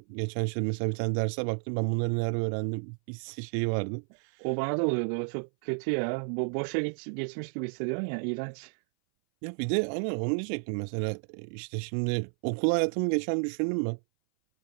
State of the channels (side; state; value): left; silent; 57 dB below the other